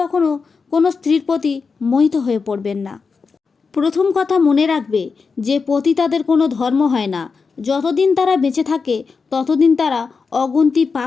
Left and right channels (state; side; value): quieter; right; 5.0 dB